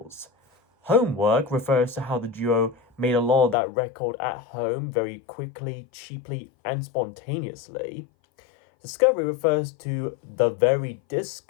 Homework refers to how the duo made a lot of that record at home very quickly, cheaply, and spontaneously. Discovery refers to the very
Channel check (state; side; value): drops out; right; at 3.6 s